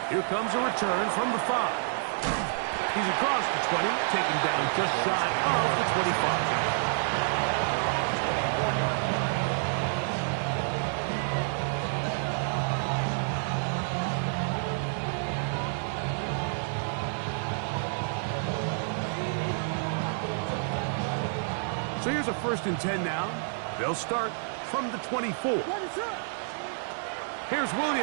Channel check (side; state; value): left; silent; 57 dB below the other